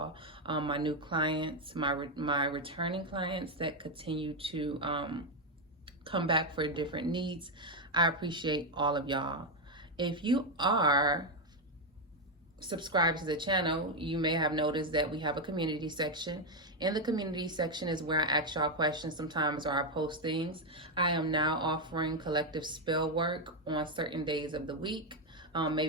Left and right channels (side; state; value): both; normal; correlation 0.04